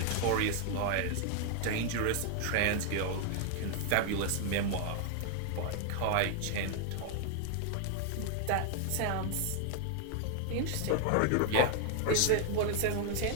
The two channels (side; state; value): both; different; correlation 0.00